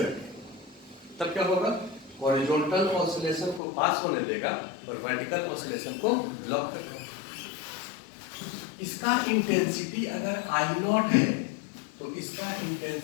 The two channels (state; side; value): drops out; right; at 3.6 s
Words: रखें तब क्या होगा? हॉरिजॉन्टल ऑसिलेशन को पास होने देगा और वर्टिकल ऑसिलेशन को ब्लॉक कर देगा। इसका इंटेंसिटी अगर आई नॉट है तो इसका